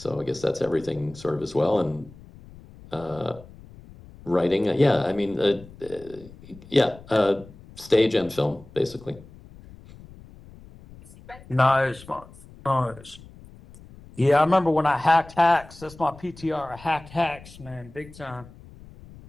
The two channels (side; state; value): left; noise; rumble, 20 dB below the sound